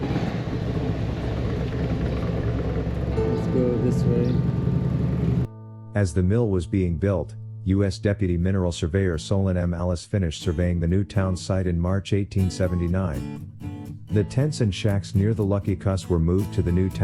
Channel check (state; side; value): identical; both; correlation 1.00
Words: Let's go this way. As the mill was being built, U.S. Deputy Mineral Surveyor Solon M. Alice finished surveying the new town site in March 1879. The tents and shacks near the Lucky Cuss were moved to the new